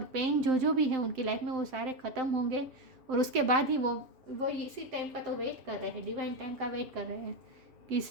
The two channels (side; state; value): left; late; 7.7 ms